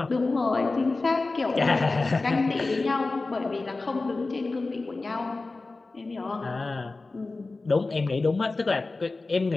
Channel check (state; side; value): quieter; right; 3.5 dB